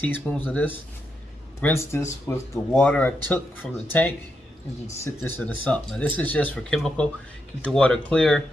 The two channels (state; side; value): normal; both; correlation 0.83